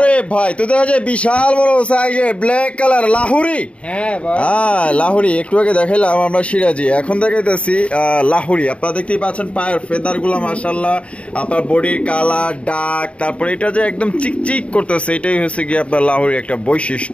ভাই তো দেখা যায় বিশাল বড় সাইজের ব্ল্যাক কালার লাহুরি। হ্যাঁ ভাই লাহুরি, একটু আগে দেখাইলাম আমরা সিরাজি, এখন দেখাইতেছি লাহুরি। আপনারা দেখতেই পাচ্ছেন পায়ের ফেদার গুলা মাশাআল্লাহ, আপনার বডির কালার ডাক, তারপরে এটা যে একদম চিকচিক করতেছে, এটাই হচ্ছে কি আপনার লাহুরি একটা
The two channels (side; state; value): right; late; 0.062 ms